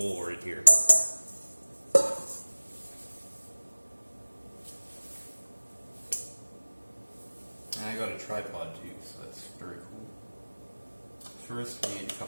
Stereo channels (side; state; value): both; inverted; correlation -1.00